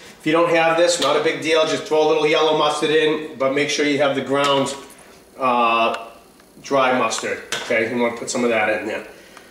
you don't have this, not a big deal, just throw a little yellow mustard in, but make sure you have the ground dry mustard. Okay, you want to put some of that in there.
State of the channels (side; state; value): both; identical; correlation 1.00